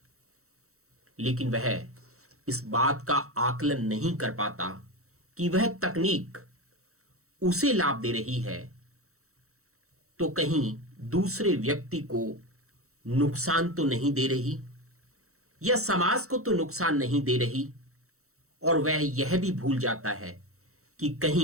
लेकिन वह इस बात का आकलन नहीं कर पाता कि वह तकनीक उसे लाभ दे रही है तो कहीं दूसरे व्यक्ति को नुकसान तो नहीं दे रही, या समाज को तो नुकसान नहीं दे रही। और वह यह भी भूल जाता है कि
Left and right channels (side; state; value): left; late; 0.64 ms